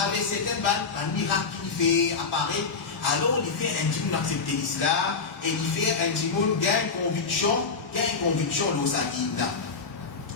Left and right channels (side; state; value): right; quieter; 4.9 dB